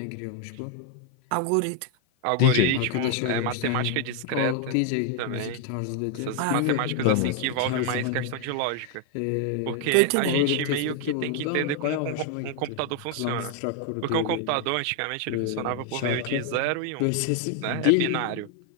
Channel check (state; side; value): different; both; correlation 0.00